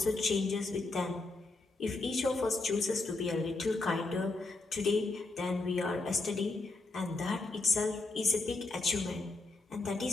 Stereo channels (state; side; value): quieter; right; 3.3 dB